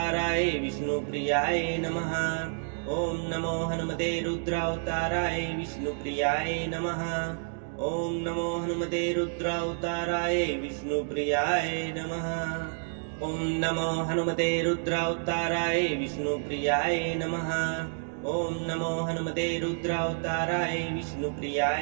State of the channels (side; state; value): left; silent; digital silence